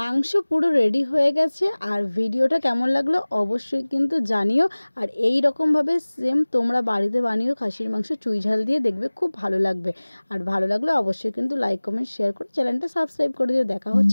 পুরো রেডি হয়ে গেছে। আর ভিডিওটা কেমন লাগলো অবশ্যই কিন্তু জানিও। আর এই রকমভাবে সেম তোমরা বাড়িতে বানিও খাসির মাংস চুই ঝাল দিয়ে, দেখবে খুব ভালো লাগবে। আর ভালো লাগলে অবশ্যই কিন্তু লাইক কমেন্ট শেয়ার করে চ্যানেলটা সাবস্ক্রাইব করে দিও। দেখা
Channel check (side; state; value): both; inverted; correlation -1.00